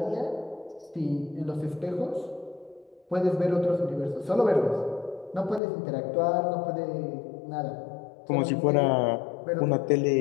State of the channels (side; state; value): right; drops out; at 5.6 s